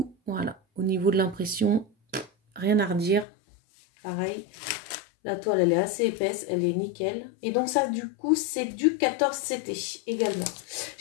voilà, au niveau de l'impression, rien à redire. Pareil, la toile elle est assez épaisse, elle est nickel. Et donc ça du coup c'est du 14 CT également.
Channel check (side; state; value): right; drops out; at 3.2 s